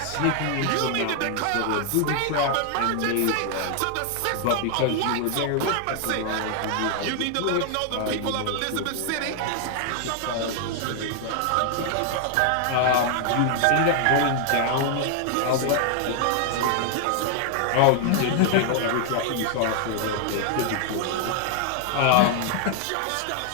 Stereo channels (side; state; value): both; different; correlation 0.00